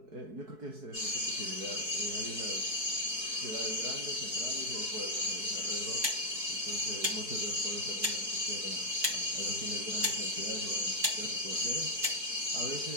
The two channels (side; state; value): left; late; 4.6 ms